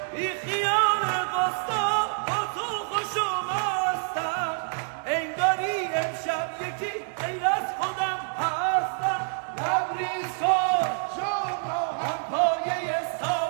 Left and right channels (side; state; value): left; silent; 60 dB below the other